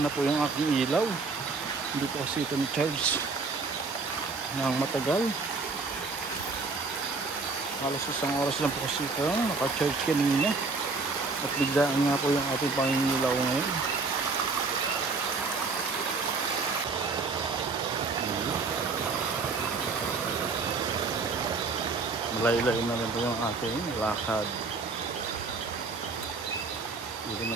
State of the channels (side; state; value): left; quieter; 4.1 dB